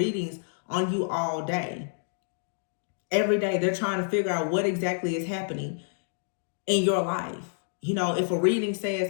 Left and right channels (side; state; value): right; silent; digital silence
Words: on you all day. Every day they're trying to figure out what exactly is happening in your life. You know, if a reading